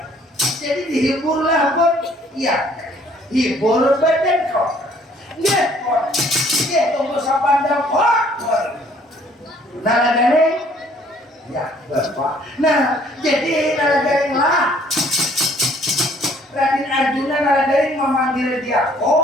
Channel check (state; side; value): normal; both; correlation 0.60